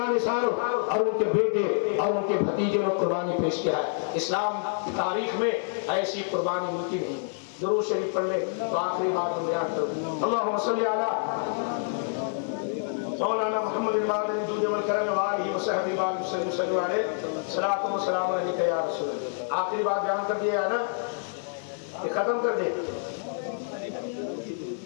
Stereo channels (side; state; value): right; silent; digital silence